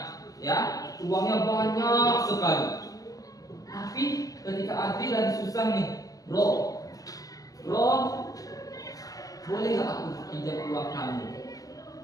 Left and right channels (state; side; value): late; right; 0.17 ms